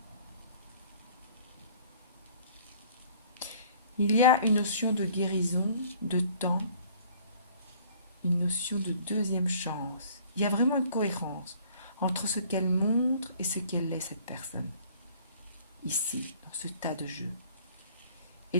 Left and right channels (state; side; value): inverted; both; correlation -0.54